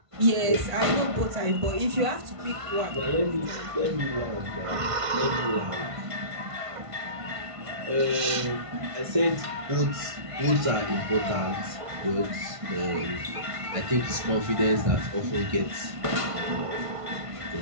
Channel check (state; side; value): late; left; 1.5 ms